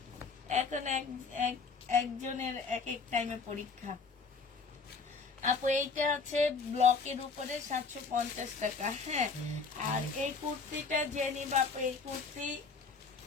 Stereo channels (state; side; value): quieter; right; 4.7 dB